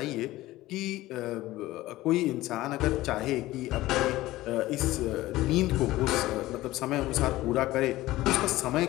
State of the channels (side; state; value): right; quieter; 17.0 dB